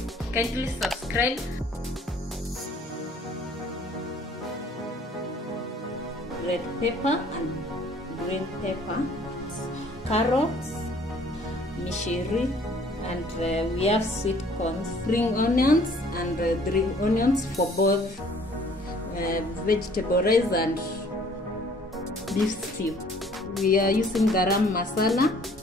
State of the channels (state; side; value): normal; both; correlation 0.56